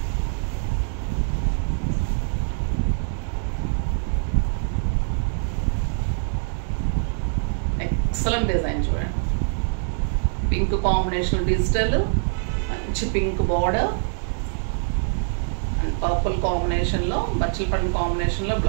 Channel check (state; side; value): silent; left; digital silence